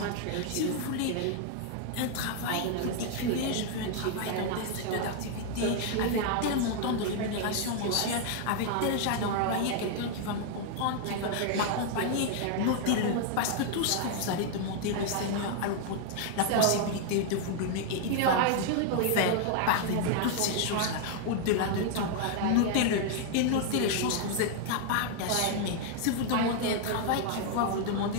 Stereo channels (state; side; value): different; both; correlation 0.00